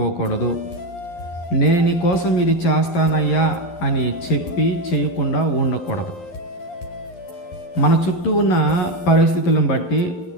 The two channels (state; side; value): late; right; 11 ms